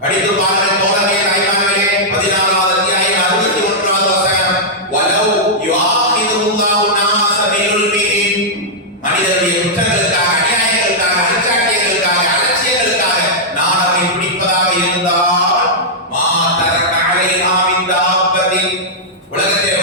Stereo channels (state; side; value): normal; both; correlation -0.08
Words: படித்து பாருங்கள் தோழர்களே, தாய்மார்களே. 14வது அத்தியாயம் 61வது வசனம். வலவ் யுஆஹிதுல்லாஹு நாஸ பிதுல்மிஹிம். மனிதனுடைய குற்றங்களுக்காக, அநியாயங்களுக்காக, அலட்சியங்களுக்காக, அலட்சியங்களுக்காக நான் அவனை பிடிப்பதாக இருந்தால் மா தரக அலைஹா மின் தாப்பத்தின். உலகத்திலே